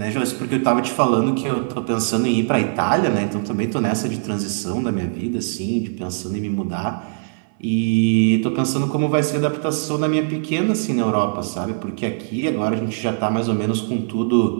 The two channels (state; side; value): silent; left; 59 dB below the other